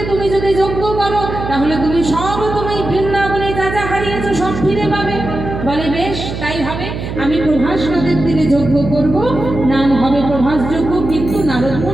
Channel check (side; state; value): right; noise; hum, 7 dB below the sound